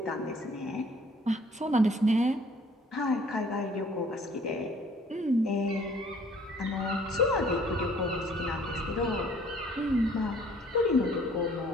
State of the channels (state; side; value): normal; both; correlation 0.57